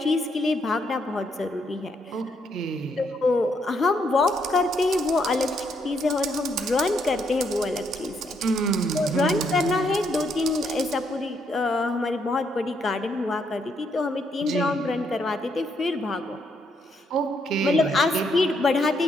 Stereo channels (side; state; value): both; normal; correlation 0.74